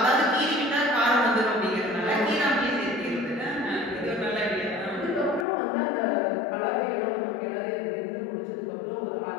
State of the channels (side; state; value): right; drops out; at 5.5 s